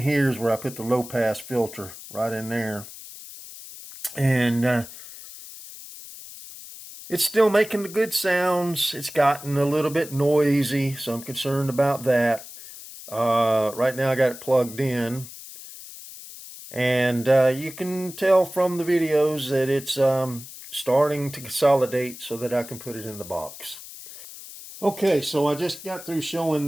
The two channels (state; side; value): noise; left; hiss, 15 dB below the sound